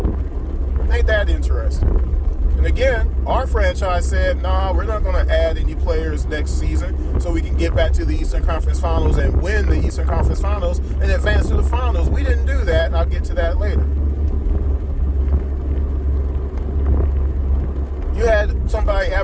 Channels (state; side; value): identical; both; correlation 1.00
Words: Ain't that interesting? And again, our franchise said, nah, we're not going to add any players next season so we can get back to the Eastern Conference Finals and win the Eastern Conference Finals and advance to the finals. We didn't do that, and I'll get to that later. You had somebody